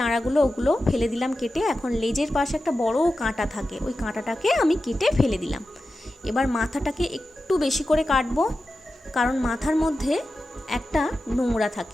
ওগুলো ফেলে দিলাম কেটে। এখন লেজের পাশে একটা বড় কাঁটা থাকে, ওই কাঁটাটাকে আমি কেটে ফেলে দিলাম। এবার মাথাটাকে একটু বেশি করে কাটবো, কারণ মাথার মধ্যে একটা নোংরা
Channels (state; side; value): normal; both; correlation 0.93